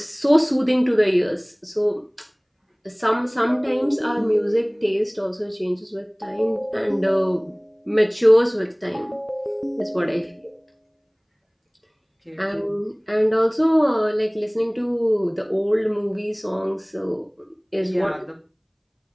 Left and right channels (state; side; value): identical; both; correlation 1.00